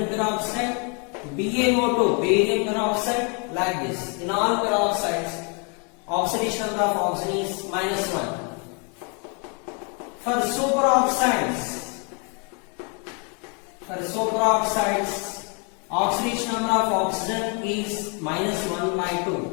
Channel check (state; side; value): quieter; right; 36.2 dB